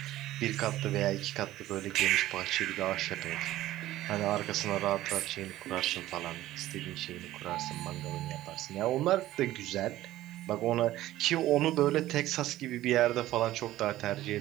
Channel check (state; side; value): quieter; left; 15.0 dB